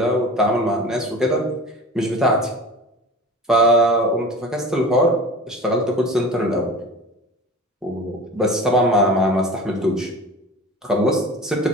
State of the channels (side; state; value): both; normal; correlation 0.37